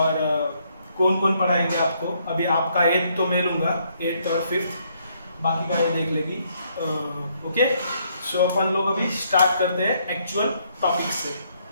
कौन कौन पढ़ाएंगे आपको। अभी आपका 8th तो मैं लूँगा, 8th और 5th, बाकी का ये देख लेगी। ओके, सो अपन लोग अभी स्टार्ट करते हैं एक्चुअल टॉपिक से।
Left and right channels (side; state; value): both; inverted; correlation -0.71